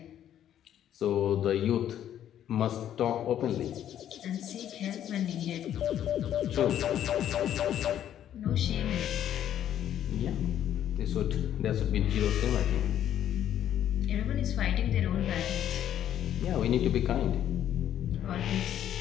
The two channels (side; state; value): right; quieter; 10.7 dB